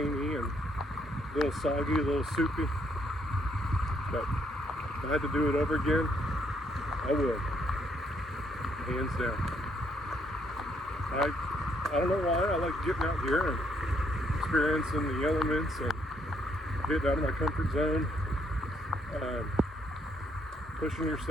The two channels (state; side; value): normal; both; correlation 0.71